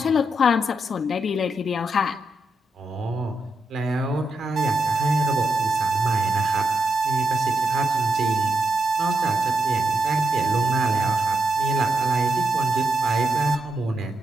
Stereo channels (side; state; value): both; normal; correlation 0.84